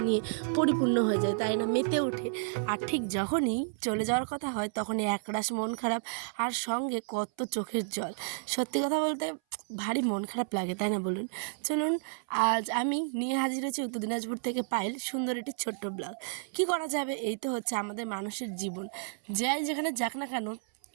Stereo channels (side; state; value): left; silent; 57 dB below the other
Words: নিয়ে পরিপূর্ণ হয়ে যায়, তাই না? মেতে ওঠে। আর ঠিক যখনই চলে যাওয়ার কথা হয় তখনই একরাশ মন খারাপ আর সঙ্গে কত চোখের জল। সত্যি কথা বলতে ভারী মন খারাপ লাগে, তাই না বলুন? চলুন, আজ আমি নিয়ে হাজির হয়েছি উত্তর দিনাজপুর থেকে পায়েল, সুন্দর একটি ছোট্ট ব্লগ। কী করা যাবে, এই তো হচ্ছে আমাদের মানুষের জীবন। যাই যেখানে যাক না কেন,